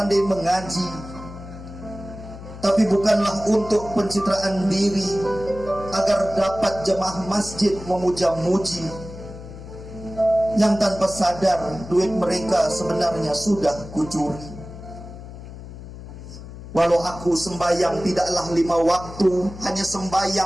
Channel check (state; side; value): noise; left; hum, 13 dB below the sound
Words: mengaji. Tapi bukanlah untuk pencitraan diri, agar dapat jemaah masjid memuja-muji, yang tanpa sadar duit mereka sebenarnya sudah kucuri. Walau aku sembahyang tidaklah 5 waktu, hanya